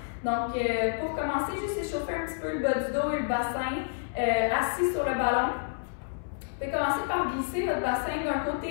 Donc, pour commencer, juste échauffer un petit peu le bas du dos et le bassin assis sur le ballon. Vous pouvez commencer par glisser votre bassin d'un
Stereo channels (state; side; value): silent; right; 58 dB below the other